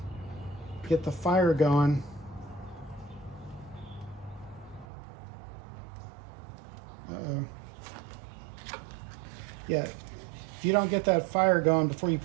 get the fire going. Uh-oh. Yeah, if you don't get that fire going before you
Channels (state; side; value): drops out; left; at 4.9 s